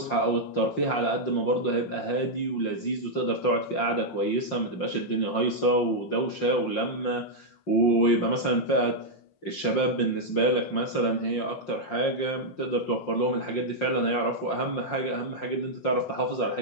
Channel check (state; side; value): late; right; 5.7 ms